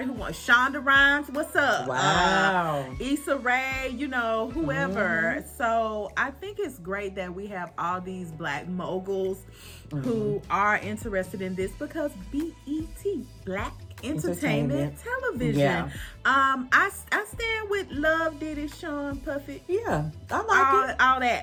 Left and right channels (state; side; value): identical; both; correlation 1.00